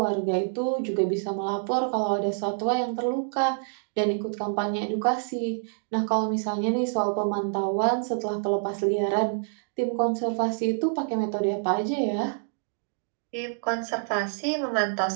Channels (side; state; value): left; silent; digital silence